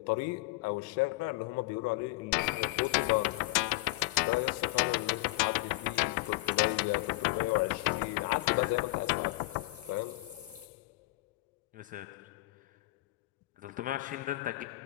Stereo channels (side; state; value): right; quieter; 21.2 dB